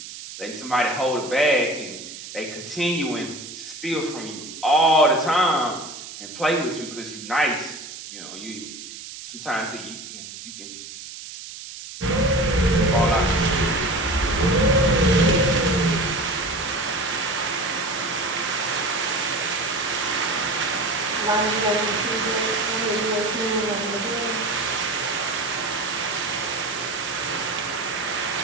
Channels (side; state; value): right; noise; hiss, 12 dB below the sound